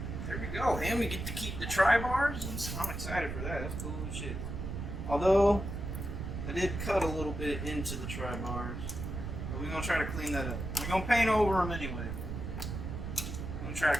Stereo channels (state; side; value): noise; right; rumble, 5 dB below the sound